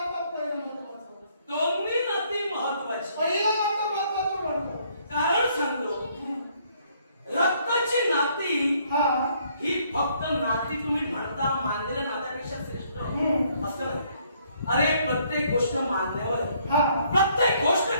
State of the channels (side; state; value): both; inverted; correlation -0.67